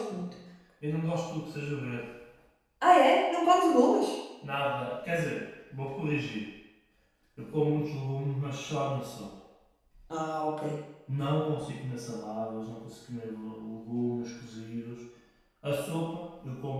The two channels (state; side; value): identical; both; correlation 1.00